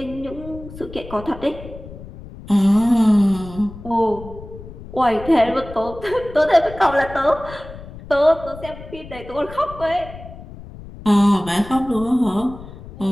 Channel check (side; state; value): left; noise; rumble, 15 dB below the sound